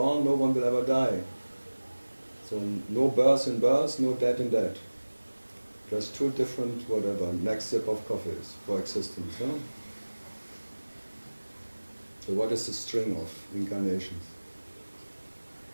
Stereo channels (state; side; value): inverted; both; correlation -1.00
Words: No one will ever die. So no birth in birth, no death in death. Just two different whatever. Next sip of coffees for existence. No? So what is the string of incarnations?